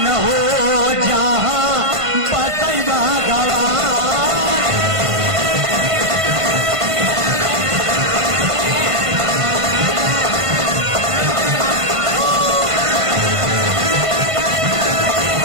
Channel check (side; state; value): left; late; 1.5 ms